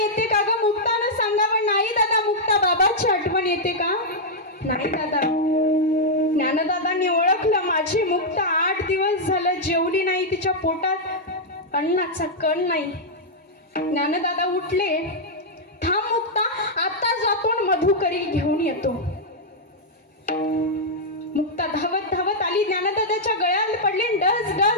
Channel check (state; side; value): normal; both; correlation -0.05